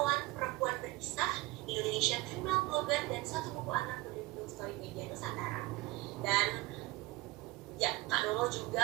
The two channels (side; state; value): left; quieter; 21.0 dB